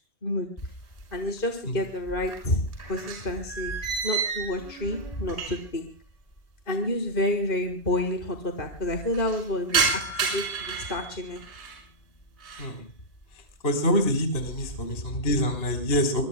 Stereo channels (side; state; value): right; late; 1.8 ms